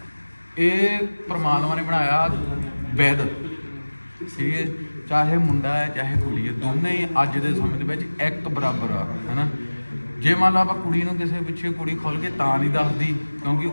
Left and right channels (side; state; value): both; inverted; correlation -1.00